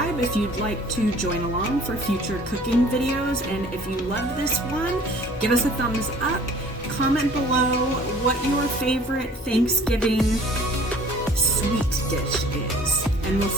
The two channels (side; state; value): both; normal; correlation 0.51